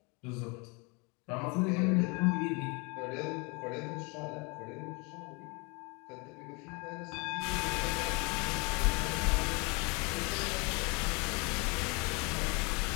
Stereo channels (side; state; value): right; quieter; 30.2 dB